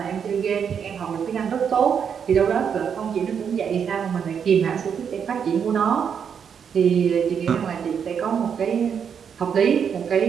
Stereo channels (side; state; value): left; quieter; 7.3 dB